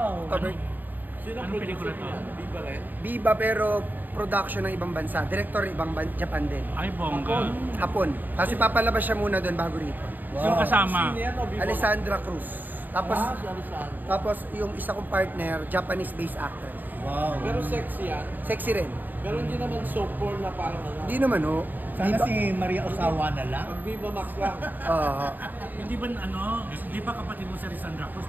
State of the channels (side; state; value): left; late; 0.088 ms